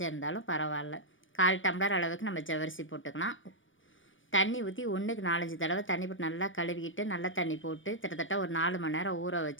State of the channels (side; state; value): right; late; 0.57 ms